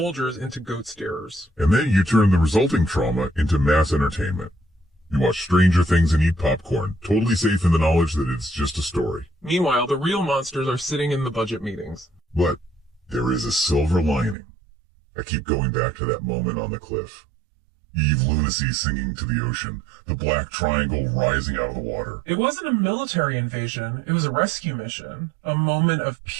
into goat steerers. And then you turn the resulting trauma into mass entertainment. You watch Stranger Things and eat popcorn, totally safe in the knowledge that it's just a story. Meanwhile, the real monsters are sitting in the budget meetings. But there is a silver lining. I keep going back to that moment on the cliff. Eve Lunacy singing to the ocean, the black triangle rising out of the water. It wasn't a military invasion, it was a rescue mission. A moment of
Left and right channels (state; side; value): drops out; left; at 14.4 s